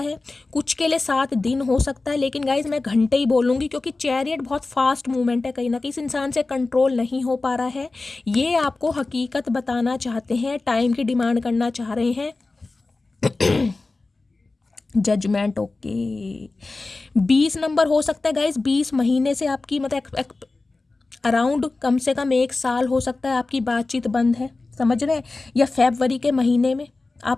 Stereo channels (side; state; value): right; quieter; 3.4 dB